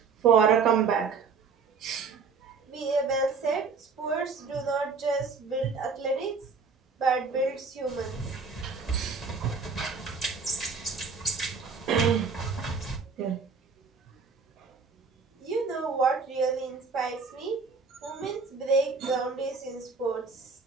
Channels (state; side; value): quieter; left; 5.0 dB